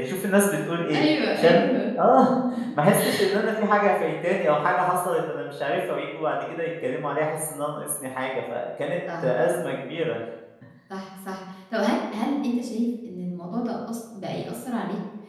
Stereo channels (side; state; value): both; identical; correlation 1.00